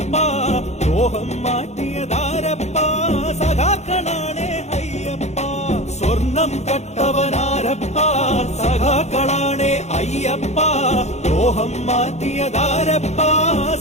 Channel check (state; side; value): late; right; 0.32 ms